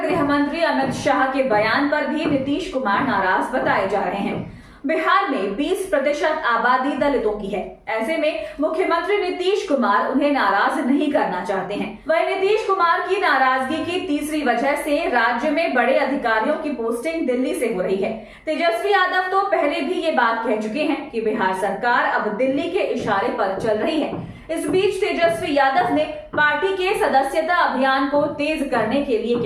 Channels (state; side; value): identical; both; correlation 1.00